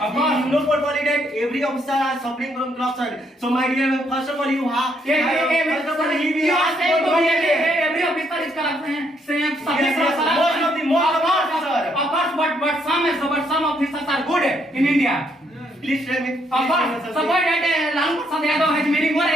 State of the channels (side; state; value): both; normal; correlation 0.72